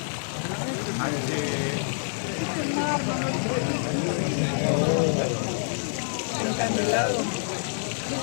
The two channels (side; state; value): right; silent; digital silence